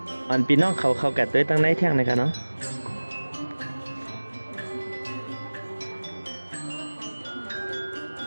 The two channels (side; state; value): both; inverted; correlation -1.00